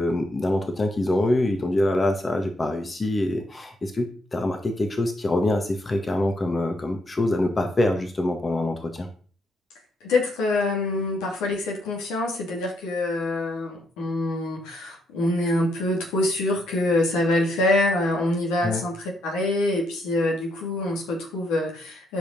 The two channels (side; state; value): both; normal; correlation 0.76